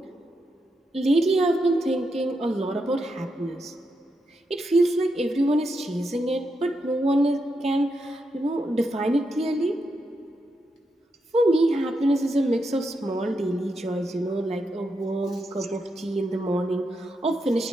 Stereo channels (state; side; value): normal; both; correlation 0.84